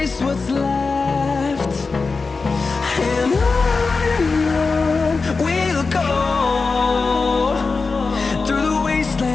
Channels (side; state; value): right; quieter; 4.3 dB